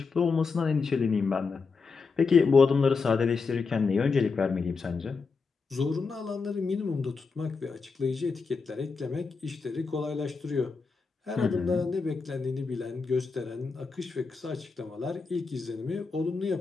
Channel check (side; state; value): right; quieter; 4.7 dB